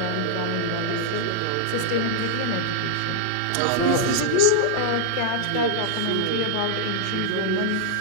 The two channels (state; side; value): different; both; correlation -0.01